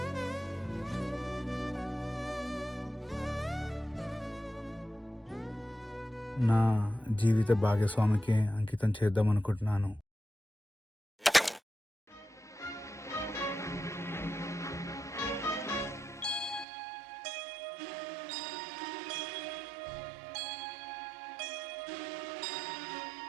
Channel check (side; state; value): left; drops out; at 16.7 s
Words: నా జీవిత భాగస్వామికి అంకితం చేద్దాం అనుకుంటున్నాను.